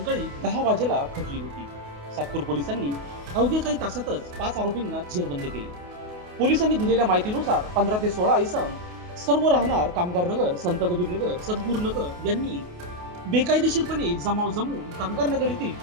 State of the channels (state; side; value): late; left; 28 ms